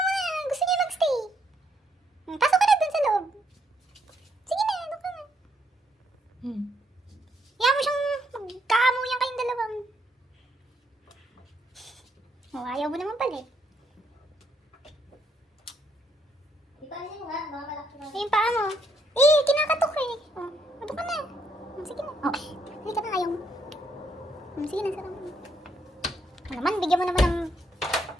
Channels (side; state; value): both; normal; correlation 0.74